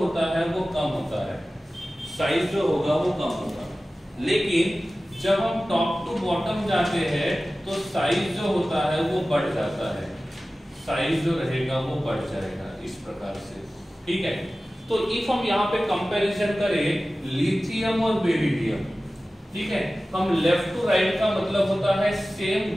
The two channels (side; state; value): both; normal; correlation 0.96